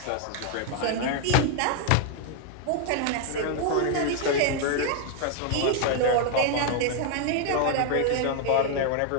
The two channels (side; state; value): both; different; correlation 0.00